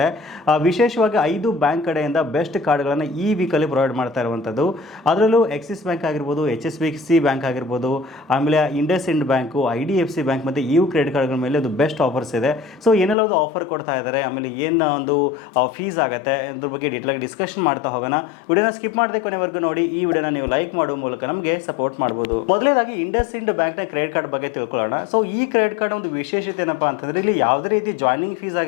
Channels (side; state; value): right; drops out; at 13.2 s